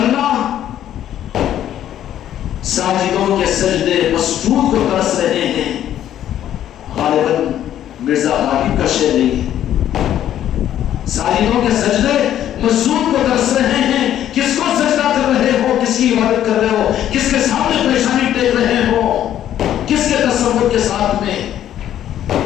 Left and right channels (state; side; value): quieter; right; 11.3 dB